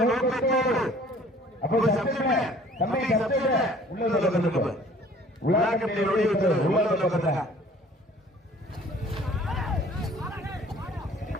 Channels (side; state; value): both; normal; correlation 0.52